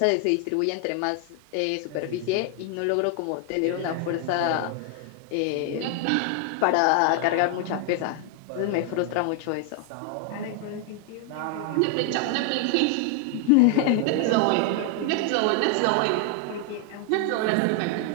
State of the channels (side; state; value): both; different; correlation 0.00